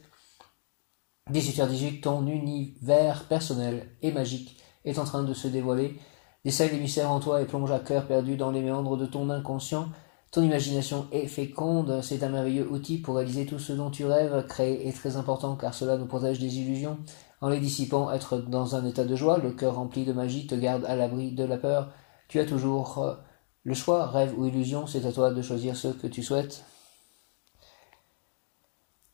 18h18, ton univers personnel et magique est en train de se dévoiler. Décèle les mystères en toi et plonge à cœur perdu dans les méandres de ton inconscient. Ton imagination est féconde, c'est un merveilleux outil pour réaliser tout ce dont tu rêves. Créer est très important car cela nous protège des illusions. En les dissipant, être dans un état de joie, le cœur rempli de magie te garde à l'abri de la peur. Tu as toujours le choix, rêve ou illusion, c'est à toi de choisir ce que tu souhaites.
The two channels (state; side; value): silent; right; digital silence